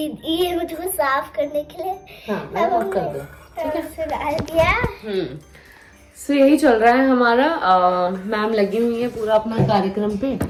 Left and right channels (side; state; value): both; identical; correlation 1.00